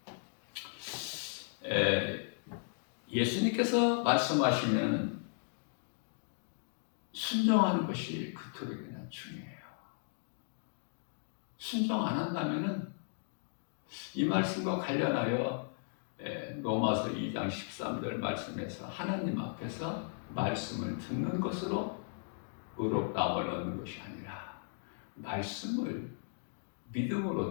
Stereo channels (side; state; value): right; silent; digital silence